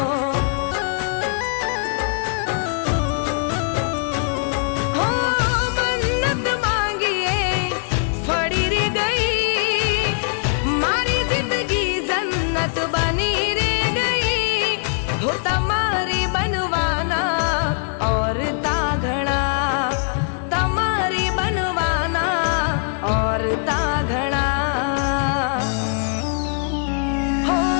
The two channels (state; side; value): silent; right; 55 dB below the other